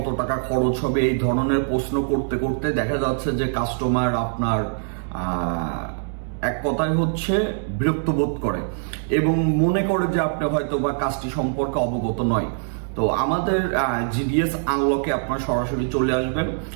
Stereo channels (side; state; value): left; silent; digital silence